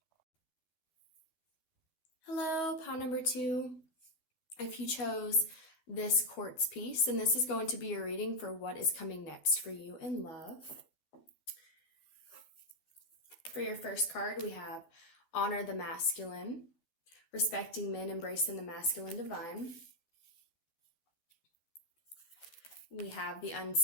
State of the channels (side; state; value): right; late; 12 ms